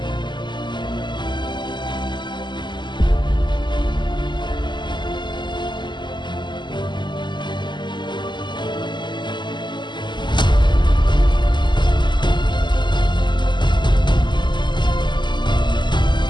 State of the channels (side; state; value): right; late; 0.22 ms